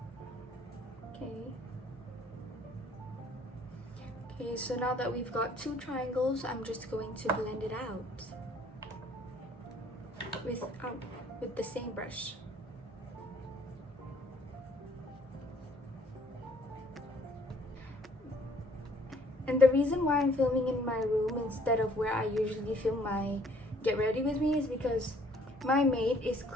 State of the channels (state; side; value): normal; both; correlation 0.60